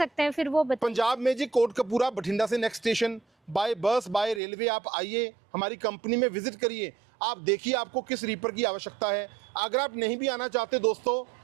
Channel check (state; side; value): drops out; left; at 4.4 s